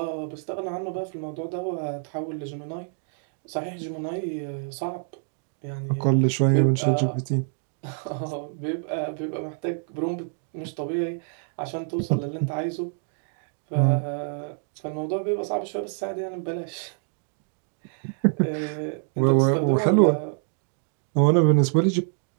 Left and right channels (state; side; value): silent; left; 58 dB below the other